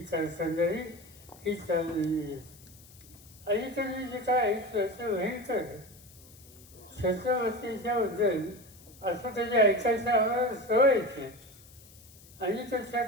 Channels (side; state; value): left; noise; hiss, 23 dB below the sound